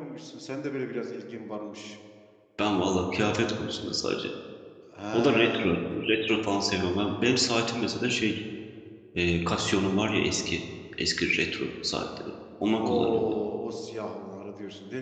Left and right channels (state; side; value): identical; both; correlation 1.00